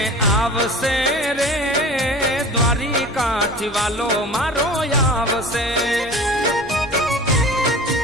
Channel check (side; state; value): both; normal; correlation 0.39